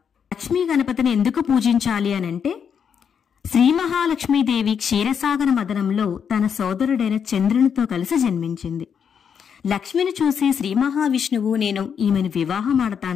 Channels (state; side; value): quieter; right; 7.3 dB